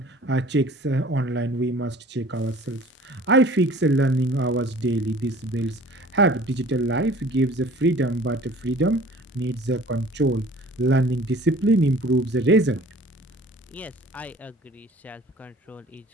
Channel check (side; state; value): both; normal; correlation 0.48